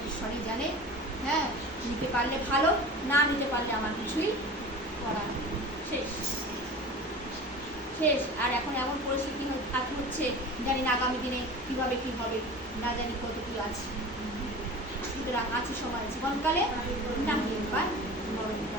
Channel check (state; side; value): normal; both; correlation 0.36